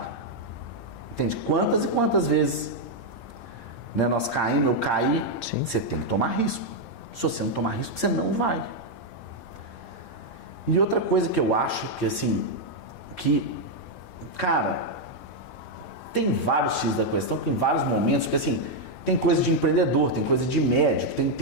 Entende? Quantas e quantas vezes, né, nós caímos, eu caí, você tem que tomar risco. Se você não tomar risco, você não vai. E outra coisa que eu acho que, assim, que Cara, tem vários X da questão, tem vários momentos, porque assim, tem coisa de empreendedor, tem coisa de médico,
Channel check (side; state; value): right; late; 8.8 ms